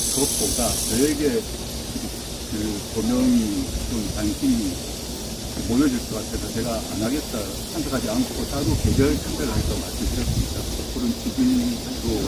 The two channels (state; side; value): identical; both; correlation 1.00